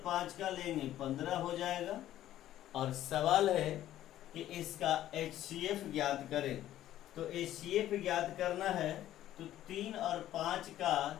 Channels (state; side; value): quieter; right; 12.9 dB